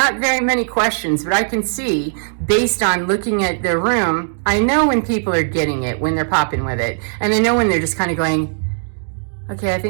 very many questions, but I can see based on looking at their room, I know when people are getting it, when they're popping with it. And I know when they're just kind of going, okay, I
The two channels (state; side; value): silent; left; digital silence